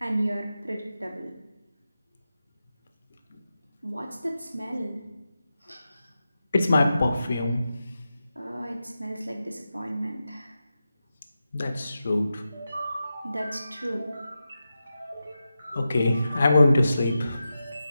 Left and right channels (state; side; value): inverted; both; correlation -0.91